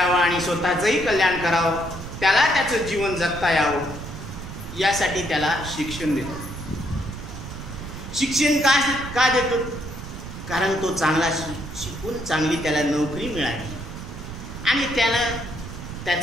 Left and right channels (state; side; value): noise; right; rumble, 10 dB below the sound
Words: आणि स्वतःचंही कल्याण करावं, त्याला त्याचं जीवन जगता यावं, यासाठी त्याला शिक्षण देतो. शिक्षण का देतो? कारण तो चांगला शिकून चांगली त्याला नोकरी मिळाली आणि त्यानं